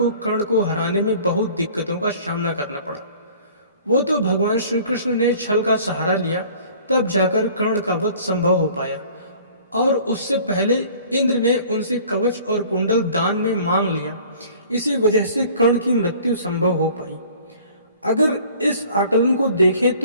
कर्ण को हराने में बहुत दिक्कतों का सामना करना पड़ा। वो तो भगवान श्री कृष्ण ने छल का सहारा लिया, तब जाकर कर्ण का वध संभव हो पाया, और उससे पहले इंद्र ने उनसे कवच और कुंडल दान में मांग लिया। इसी वजह से कर्ण की मृत्यु संभव हो पाई। अगर इस आकलन को देखें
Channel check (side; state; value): both; inverted; correlation -0.50